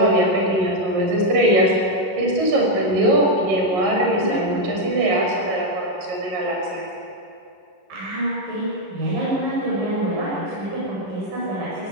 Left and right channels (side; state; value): left; late; 11 ms